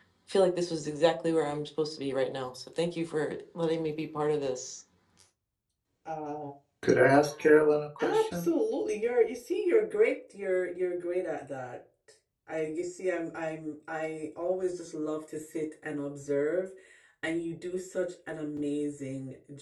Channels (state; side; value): identical; both; correlation 1.00